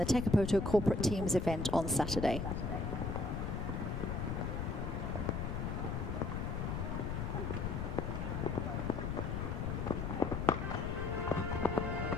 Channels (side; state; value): left; noise; rumble, 2 dB below the sound